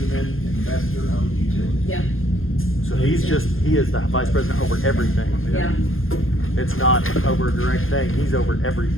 Investor Owned Utility. Yep, So he is the vice president over everything. yeah. It's not over a direct thing, he's over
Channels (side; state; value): right; late; 0.60 ms